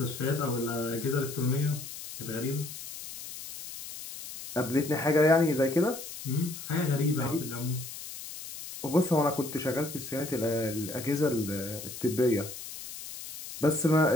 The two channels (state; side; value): noise; left; hiss, 11 dB below the sound